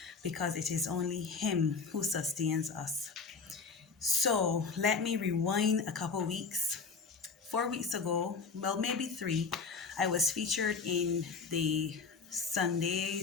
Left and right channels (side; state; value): right; quieter; 4.8 dB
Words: because it is only Him who sustains us. So let me rewind a couple weeks. 4 weeks ago, well, maybe three, I was featured in the Sunday